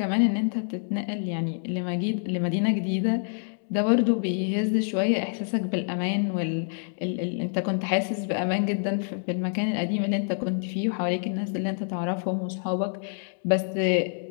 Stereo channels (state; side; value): silent; right; digital silence